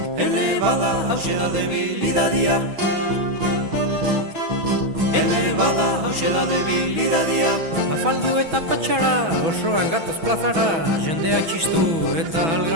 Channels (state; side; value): late; left; 6.1 ms